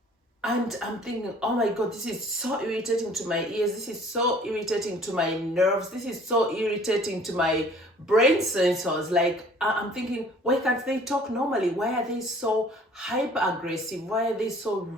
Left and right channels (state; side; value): normal; both; correlation 0.53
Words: And I'm thinking, oh my god, this is so irritating to my ears. This is so irritating to my nerves. This is so irritating to my brain sensors. Like, I'm thinking, why can't they talk normally? Why are they so hyper aggressive? Why are they so